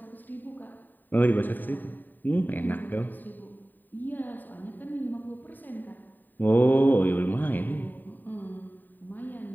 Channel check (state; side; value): late; right; 0.089 ms